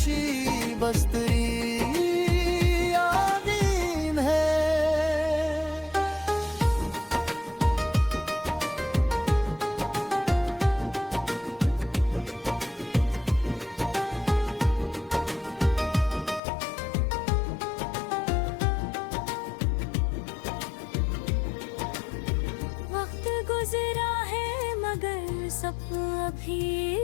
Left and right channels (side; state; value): right; drops out; at 16.4 s